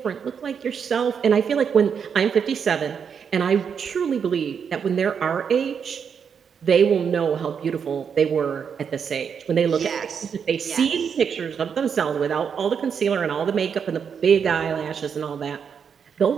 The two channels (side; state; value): left; quieter; 6.9 dB